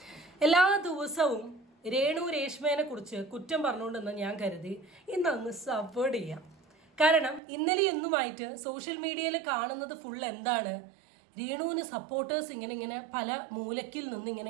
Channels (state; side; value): drops out; left; at 7.4 s